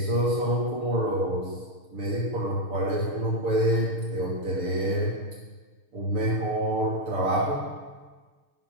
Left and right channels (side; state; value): left; late; 6.5 ms